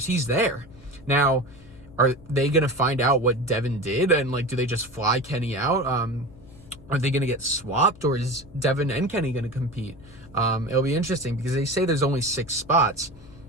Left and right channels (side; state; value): left; noise; hum, 21 dB below the sound